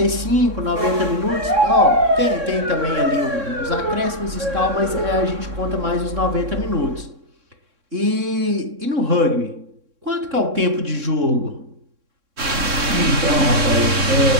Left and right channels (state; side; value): late; left; 3.6 ms